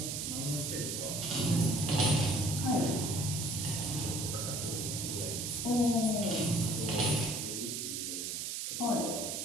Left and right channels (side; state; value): right; noise; hiss, 3 dB below the sound